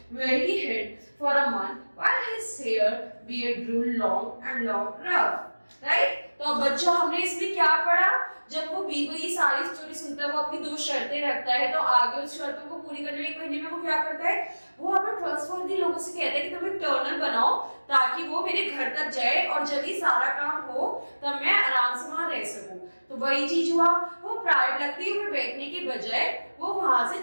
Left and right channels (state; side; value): inverted; both; correlation -1.00